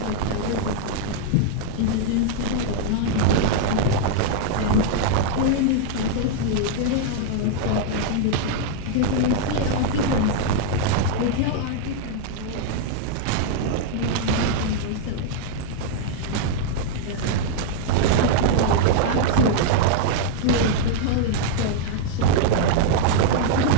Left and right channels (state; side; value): different; both; correlation -0.01